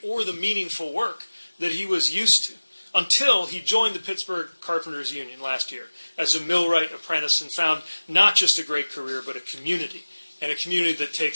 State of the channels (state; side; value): inverted; both; correlation -1.00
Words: or the meaningful work that he was used to until he joined the Pittsburgh Carpenters Union last year as a millwright apprentice and found not just a great career, but a community, and a community that